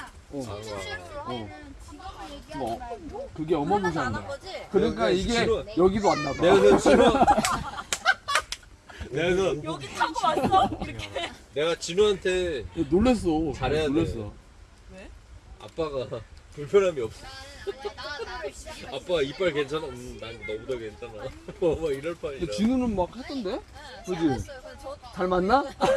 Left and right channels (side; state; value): both; identical; correlation 1.00